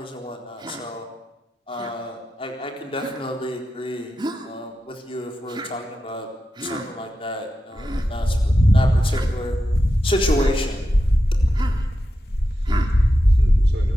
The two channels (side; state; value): both; normal; correlation 0.90